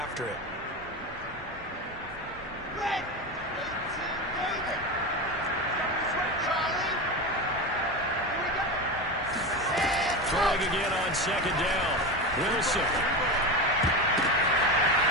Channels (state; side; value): normal; both; correlation 0.20